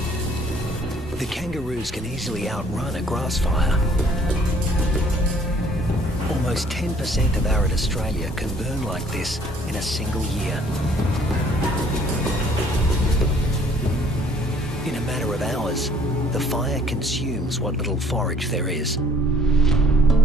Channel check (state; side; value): normal; both; correlation 0.58